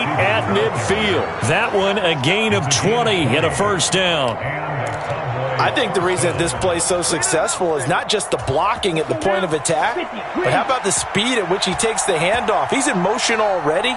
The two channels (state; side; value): identical; both; correlation 1.00